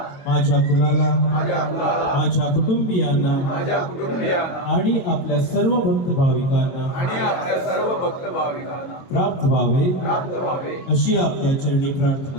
माझ्या कुलाला, माझ्या कुटुंबियांना आणि आपल्या सर्व भक्त भाविकांना प्राप्त व्हावे अशी आपल्या चरणी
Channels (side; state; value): right; late; 22 ms